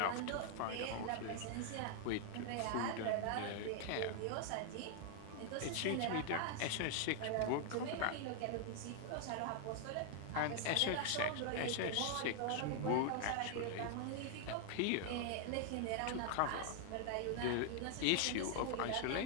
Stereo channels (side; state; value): both; different; correlation 0.00